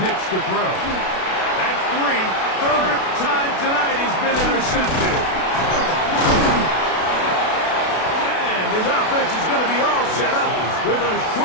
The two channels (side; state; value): right; late; 32 ms